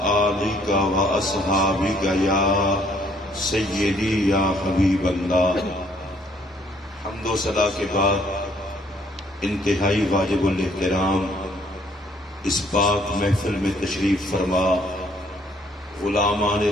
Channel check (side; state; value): both; normal; correlation 0.64